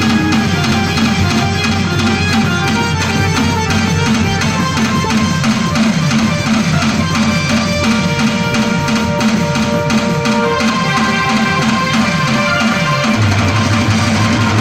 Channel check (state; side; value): identical; both; correlation 1.00